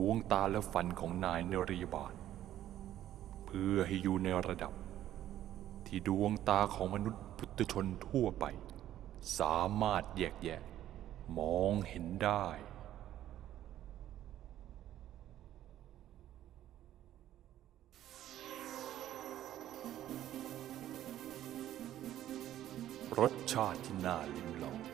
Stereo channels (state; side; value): quieter; left; 12.5 dB